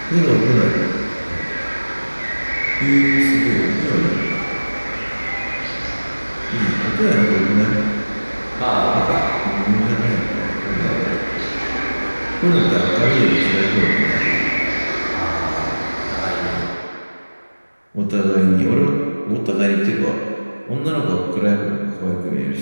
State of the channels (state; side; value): inverted; both; correlation -1.00